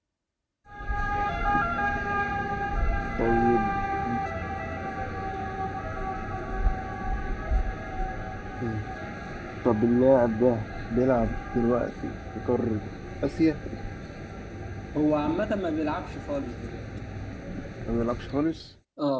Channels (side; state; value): both; identical; correlation 1.00